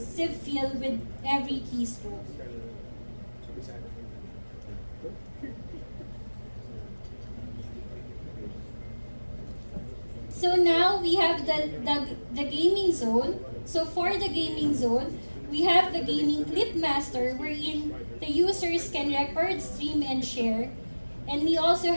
feel with every keystroke. So now we have the gaming zone. So for the gaming zone, we have the gaming clip master wherein the users can record, stream, and share. And we also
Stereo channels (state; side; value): inverted; both; correlation -1.00